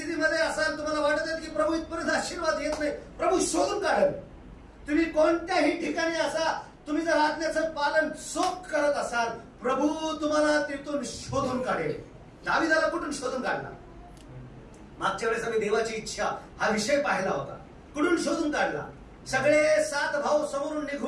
असाल, तुम्हाला वाटत आहे की प्रभू इथपर्यंत आशीर्वाद येत नाही, प्रभू शोधून काढेल. तुम्ही कोणत्याही ठिकाणी असा, तुम्ही जर आज्ञेचं पालन चोख करत असाल, प्रभू तुम्हाला तिथून शोधून काढेल. दाविदाला कुठून शोधून काढला? मागच्या वेळेस आम्ही देवाची इच्छा हा विषय पाहिला होता. कुठून शोधून काढला? सगळे 7 भाऊ समोरून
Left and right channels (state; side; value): identical; both; correlation 1.00